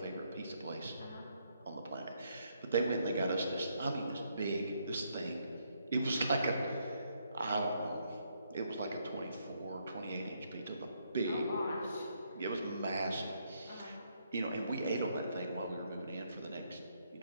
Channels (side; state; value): both; inverted; correlation -0.74